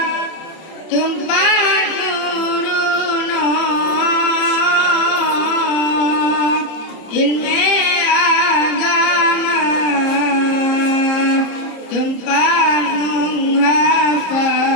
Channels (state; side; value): late; right; 30 ms